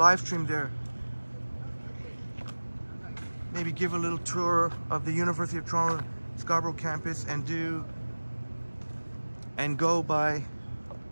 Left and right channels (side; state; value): both; inverted; correlation -1.00